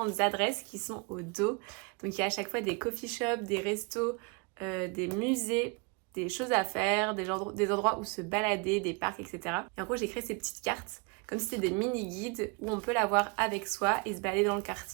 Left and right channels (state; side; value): quieter; left; 31.3 dB